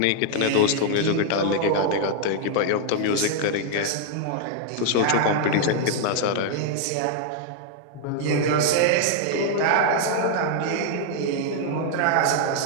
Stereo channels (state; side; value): different; both; correlation 0.00